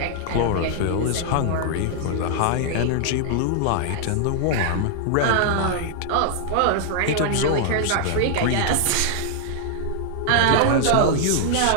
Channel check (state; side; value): different; both; correlation -0.01